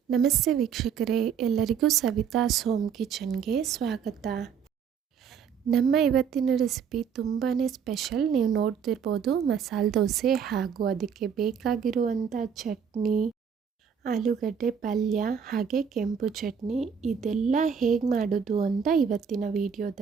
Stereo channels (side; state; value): left; quieter; 7.1 dB